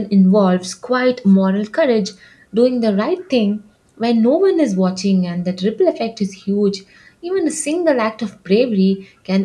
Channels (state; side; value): identical; both; correlation 1.00